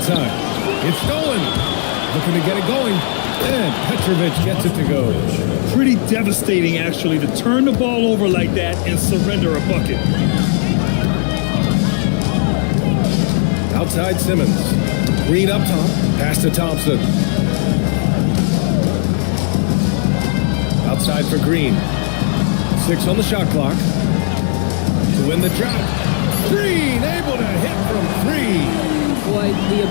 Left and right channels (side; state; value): right; silent; 66 dB below the other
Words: It's stolen. Looking to get it going. And Petrovic gets it to go. Pretty devastating, actually, to turn the ball over like that and surrender a bucket. Outside Simmons. Green up top. Pass to Thompson. Outside for Green. 6 on the shot clock. To win the drought. Green able to hit from 3. Boy, the